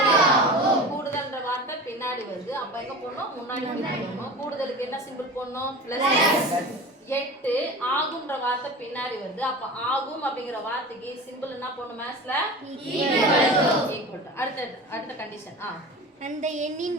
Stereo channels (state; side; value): normal; both; correlation 0.34